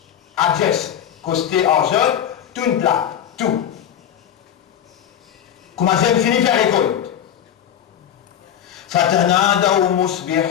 adjesse, costé, argent, tout une plaque, tout. Comment j'ai fini faire récolte? Fatanadaw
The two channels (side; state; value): right; quieter; 9.8 dB